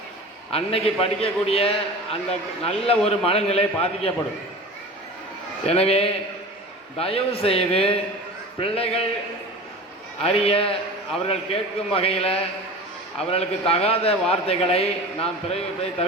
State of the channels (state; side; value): normal; both; correlation 0.35